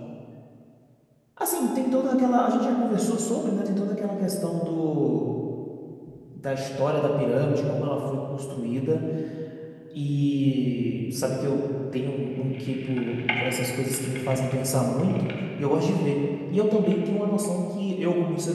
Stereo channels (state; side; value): identical; both; correlation 1.00